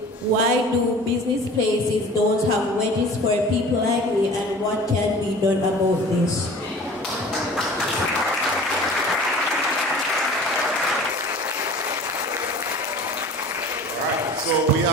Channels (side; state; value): both; normal; correlation 0.43